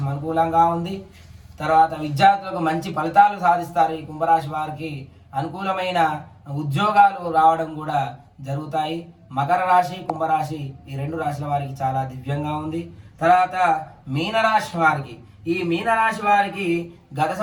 అనుకూలంగా ఉంది. తర్వాత విద్యార్థులకు మంచి ఫలితాలు సాధిస్తారు. ఈ కుంభరాశి వారికి అనుకూలమైన ఉద్యోగాలు రావడం కూడా జరుగుతాయి. మకర రాశి కుంభరాశి ఈ 2 రాశుల వారికి చాలా దివ్యంగా ఉంది. తర్వాత మీనరాశి వారికి గత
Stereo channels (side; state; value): both; identical; correlation 1.00